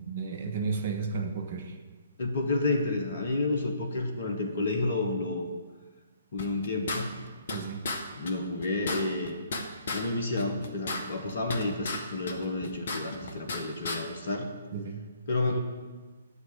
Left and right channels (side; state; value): both; inverted; correlation -0.62